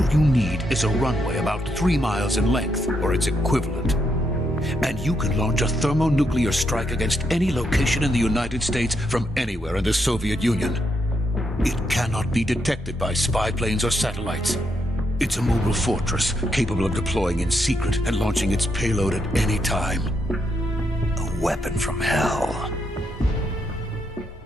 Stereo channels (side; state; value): both; normal; correlation 0.79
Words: you need is a runway about 3 miles in length, or its equivalent. And you can launch a thermonuclear strike against any location in the United States from anywhere in the Soviet Union. It cannot be detected by spy planes or satellites. It's a mobile fortress capable of deploying in secret and launching its payload at any time. A weapon from hell.